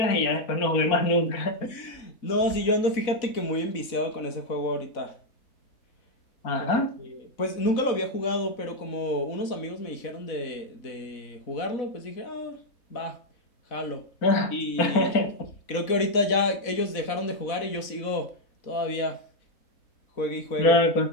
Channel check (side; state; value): right; late; 4.0 ms